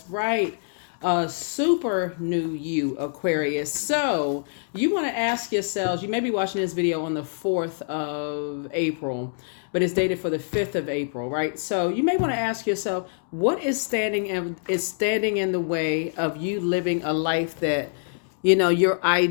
right. A super new you, Aquarius. So you want to ask yourselves, you may be watching this video on the 4th of April, but it's dated for the 5th of April, right? So you may want to ask yourself, what is standing in the way of you living a life that, your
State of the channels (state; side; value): silent; right; digital silence